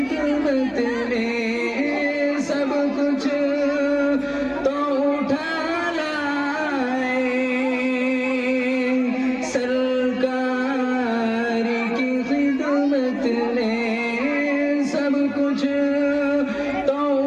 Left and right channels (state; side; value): identical; both; correlation 1.00